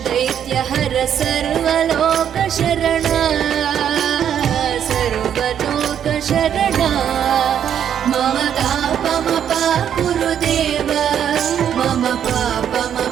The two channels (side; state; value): left; quieter; 9.2 dB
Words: सर्वलोकशरणा सर्वलोकशरणा मम तापमपा गुरुदेव मम